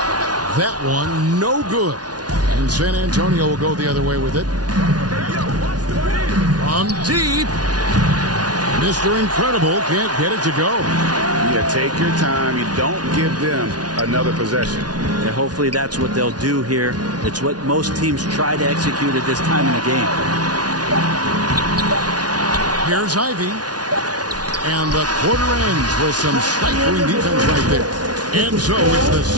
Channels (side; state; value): left; late; 0.69 ms